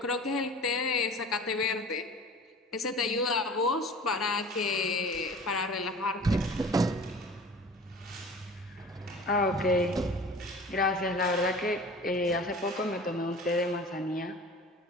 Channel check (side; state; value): both; normal; correlation 0.41